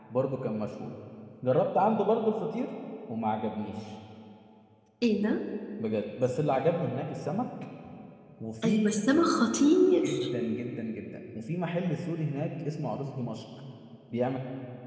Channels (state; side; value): identical; both; correlation 1.00